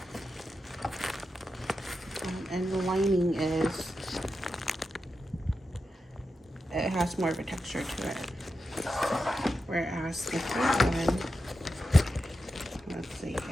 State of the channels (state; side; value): normal; both; correlation 0.89